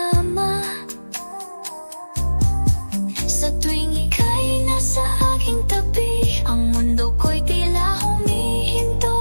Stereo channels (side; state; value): both; inverted; correlation -1.00